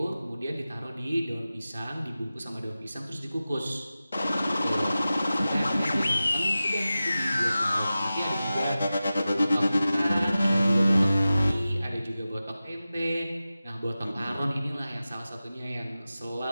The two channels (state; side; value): inverted; both; correlation -0.95